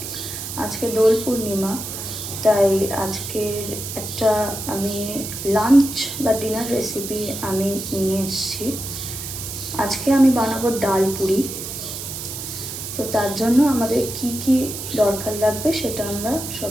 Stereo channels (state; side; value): noise; right; hiss, 7 dB below the sound